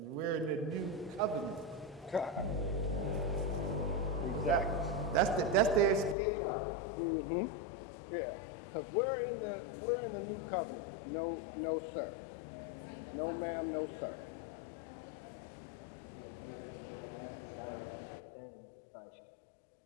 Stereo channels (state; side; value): drops out; right; at 6.2 s